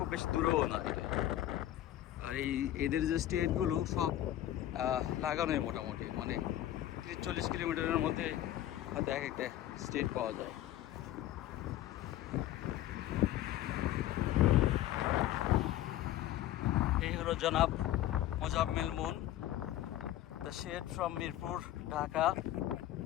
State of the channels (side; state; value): right; quieter; 13.3 dB